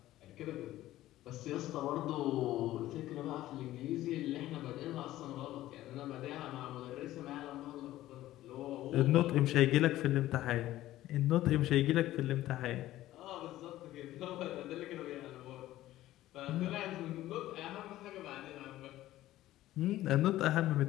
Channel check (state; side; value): quieter; right; 15.0 dB